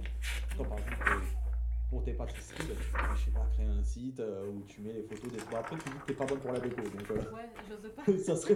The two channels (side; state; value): both; identical; correlation 1.00